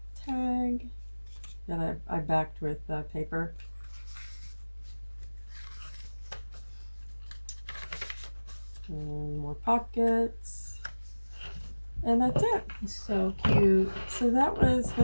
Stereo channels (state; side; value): inverted; both; correlation -1.00